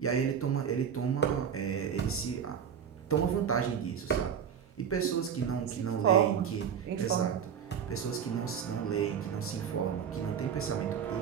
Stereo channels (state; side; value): quieter; left; 7.9 dB